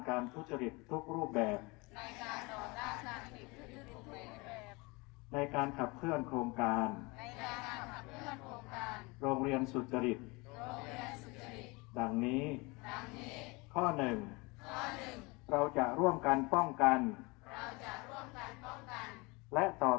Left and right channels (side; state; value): right; quieter; 26.0 dB